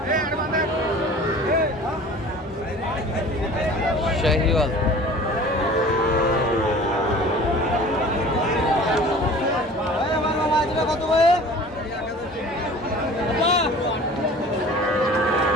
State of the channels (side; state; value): both; normal; correlation 0.44